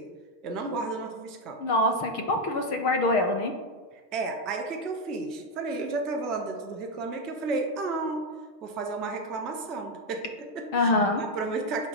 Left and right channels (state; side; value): late; right; 6.4 ms